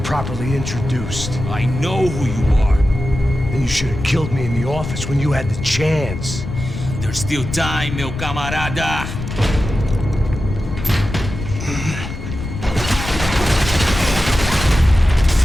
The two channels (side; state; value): left; noise; rumble, 7 dB below the sound